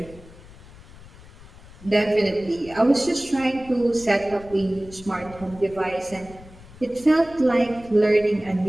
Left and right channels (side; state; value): left; noise; rumble, 20 dB below the sound